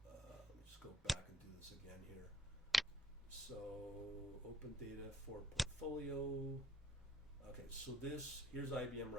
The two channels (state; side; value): normal; both; correlation 0.65